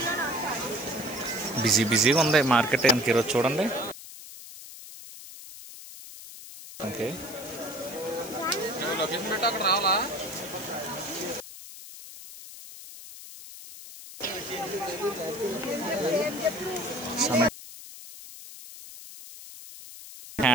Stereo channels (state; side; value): noise; left; hiss, 14 dB below the sound